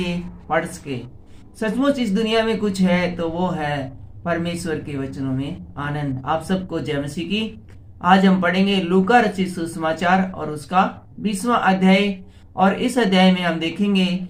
पढ़ सके। सचमुच इस दुनिया में कुछ है तो वो है परमेश्वर के वचनों में आनंद। आप सबको जय मसीह की। आज हम पढ़ेंगे लूका रचित सुसमाचार और उसका 20वां अध्याय। और इस अध्याय में हम देखेंगे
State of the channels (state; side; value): identical; both; correlation 1.00